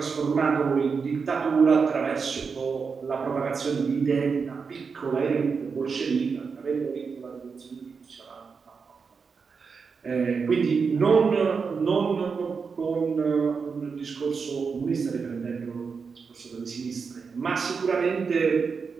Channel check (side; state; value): left; quieter; 5.4 dB